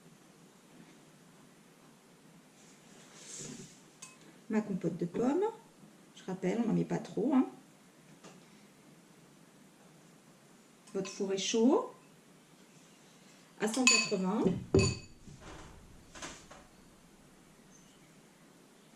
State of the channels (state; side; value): identical; both; correlation 1.00